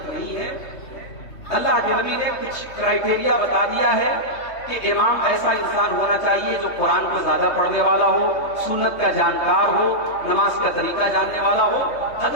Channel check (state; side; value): late; right; 3.2 ms